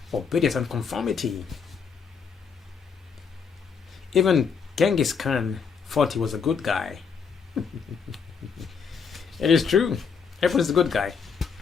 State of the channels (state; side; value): quieter; right; 6.1 dB